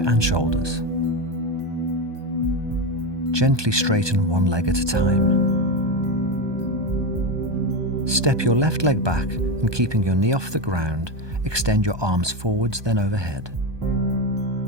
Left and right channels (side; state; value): left; late; 1.2 ms